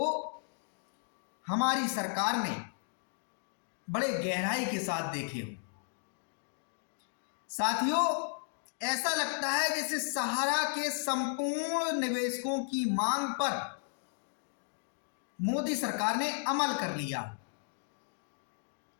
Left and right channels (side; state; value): right; silent; 55 dB below the other